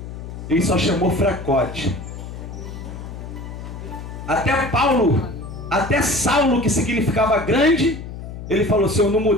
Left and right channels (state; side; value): noise; left; hum, 10 dB below the sound